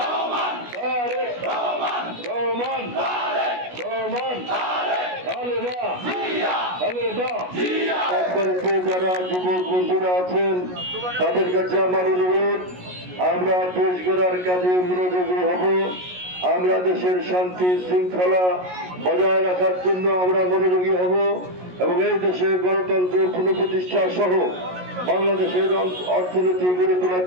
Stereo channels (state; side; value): late; left; 16 ms